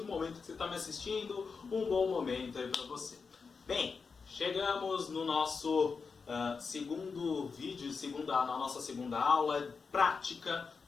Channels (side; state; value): right; quieter; 5.1 dB